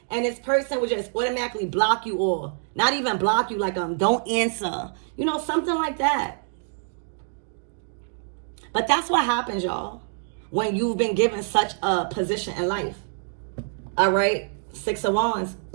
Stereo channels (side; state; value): left; silent; digital silence